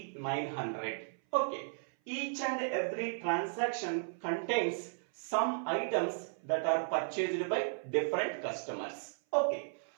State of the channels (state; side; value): silent; left; 54 dB below the other